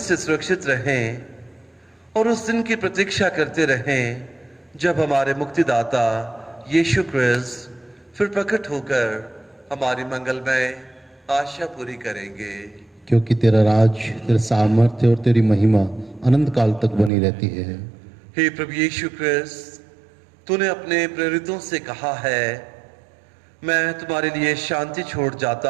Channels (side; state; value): left; drops out; at 17.1 s